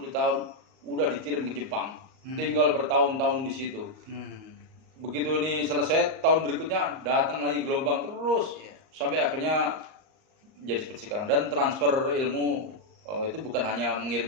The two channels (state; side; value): late; left; 38 ms